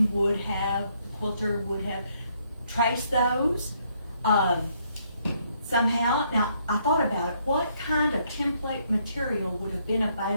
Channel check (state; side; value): inverted; both; correlation -0.70